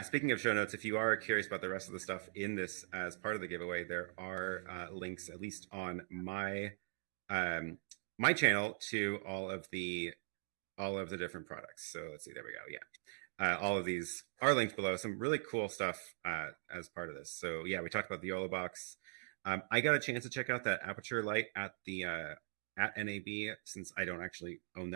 Speaking of show notes, if you are curious about the rest of the stuff in this as part of the giveaway, there are links, at least on my my channel, to all of the different products. So let's see, there we go. All of these are linked below. Some really cool stuff as part of this. So we talked about the Yololiv box. I got a chance to check out that aperture light at the at NAB, since I don't actually own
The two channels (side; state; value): left; silent; digital silence